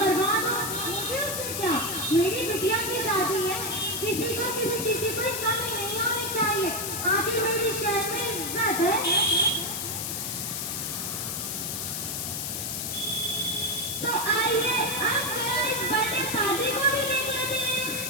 हो, मुझे उससे क्या। मेरी बिटिया की शादी है, किसी को किसी चीज की कोई कमी नहीं होनी चाहिए। आखिर मेरी शहर में इज्जत है। तो आइए अब इस बर्थडे शादी को भी देख लेते हैं।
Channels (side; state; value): left; noise; hiss, 3 dB below the sound